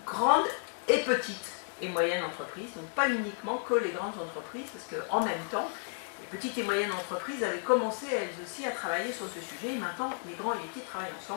grandes et petites et moyennes entreprises, donc pas uniquement que les grandes entreprises, parce qu'en même temps, les petites et moyennes entreprises avaient commencé elles aussi à travailler sur ce sujet, et maintenant les grands et les petits travaillent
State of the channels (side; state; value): right; silent; 56 dB below the other